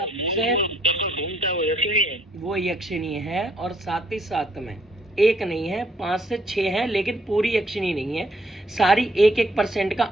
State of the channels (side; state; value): both; normal; correlation 0.67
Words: वो यक्षिणी है, और साथ ही साथ में एक नहीं है 5 से 6 है, लेकिन पूरी यक्षिणी नहीं है, सारी 1% का